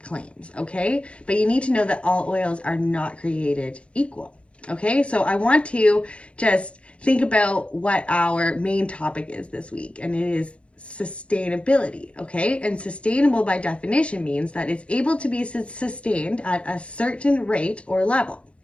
claims, okay? But you need to know that all oils are not created equal, okay? So I want to just think about what our main topic is this week, and it is sustainability, okay? And sustainable by definition means that it's able to be sustained at a certain rate or level.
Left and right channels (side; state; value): right; late; 0.060 ms